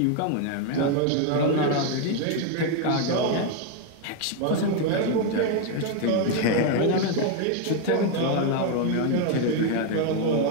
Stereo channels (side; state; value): both; different; correlation 0.01